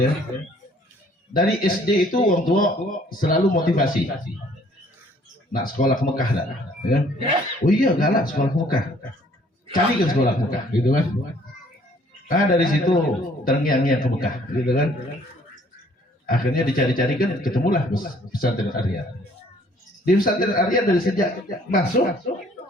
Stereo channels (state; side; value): normal; both; correlation 0.59